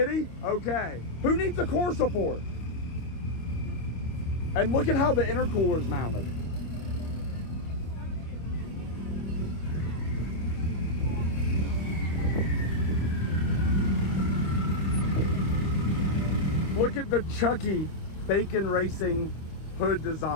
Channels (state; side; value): late; right; 25 ms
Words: Okay. Who needs a core support? And look at how the intercooler's mounted. Look at the Chucky Bacon Racing hood